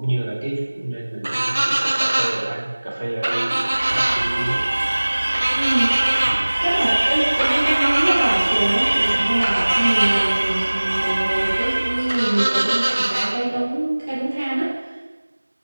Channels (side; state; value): both; inverted; correlation -1.00